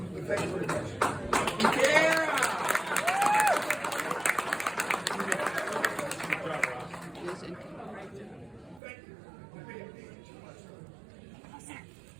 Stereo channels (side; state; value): left; drops out; at 8.8 s